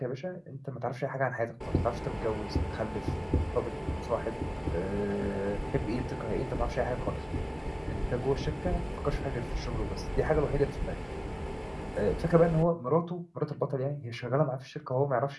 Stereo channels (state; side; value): identical; both; correlation 1.00